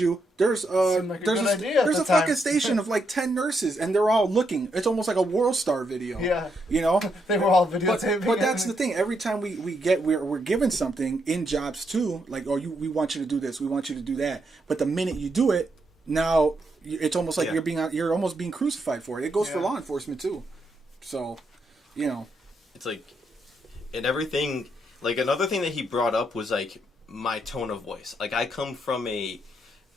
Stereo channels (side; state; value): both; normal; correlation 0.79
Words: there's Seemed like a there's good a, idea at there's the a fucking time. station of like 10 nurses and they're all looking. It's almost like a World Star video. Yeah. You know? They were all videotaping. But that's the thing. Every time we're given something in jobs too, like, oh, we want you to do this, we want you to do that. But the minute you do it, now it's almost like you're almost being crucified for it. It goes for law enforcement too. So, you know, It's like, and everything, like another thing that he brought up was like my tone of voice. Like I come from